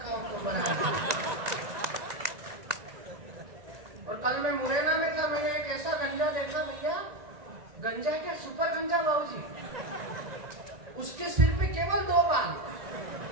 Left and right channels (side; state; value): left; late; 1.9 ms